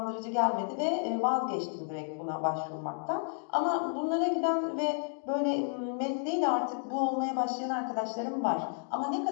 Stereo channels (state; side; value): silent; right; 57 dB below the other